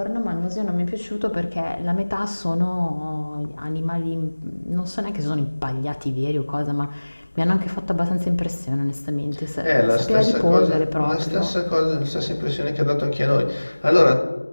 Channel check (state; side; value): inverted; both; correlation -1.00